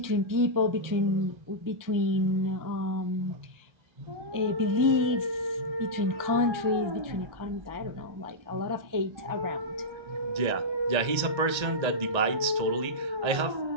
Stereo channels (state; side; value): late; left; 1.8 ms